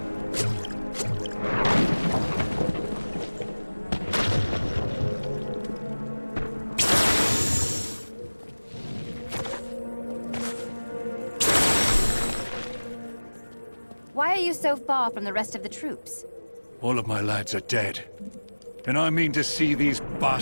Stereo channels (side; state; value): both; inverted; correlation -1.00